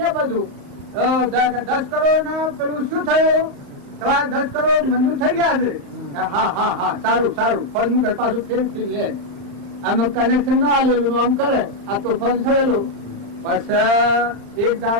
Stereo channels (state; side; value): late; left; 35 ms